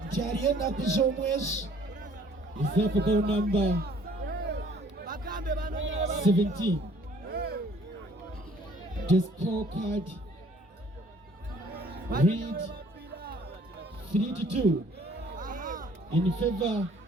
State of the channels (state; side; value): normal; both; correlation 0.58